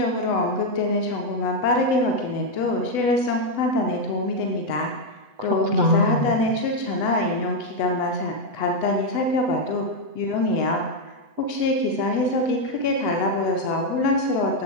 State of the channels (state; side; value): late; left; 8.0 ms